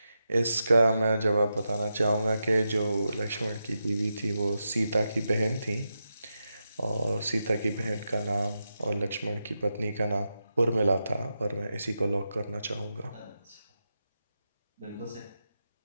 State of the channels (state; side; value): inverted; both; correlation -0.88